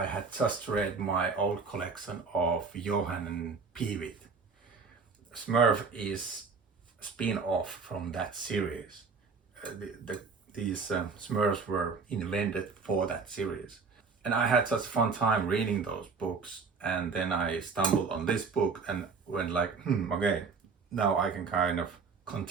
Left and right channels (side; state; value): left; quieter; 4.9 dB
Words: had just read my old collection of Johan and Peewit. Smurf is a spin-off from that series. These Smurfs were invented for that series. And I had such fun time reading those books, and then I stumbled on this book and went like, okay, now I can kind of